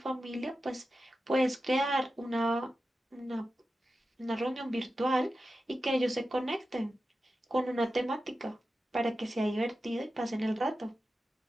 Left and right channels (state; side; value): normal; both; correlation 0.92